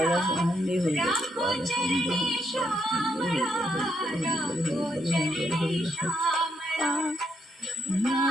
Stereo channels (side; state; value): both; normal; correlation 0.77